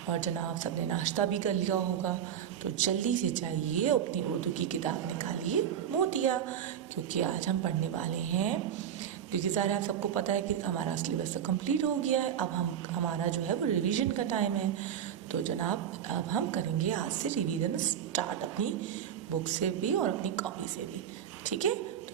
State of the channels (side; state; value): left; quieter; 9.3 dB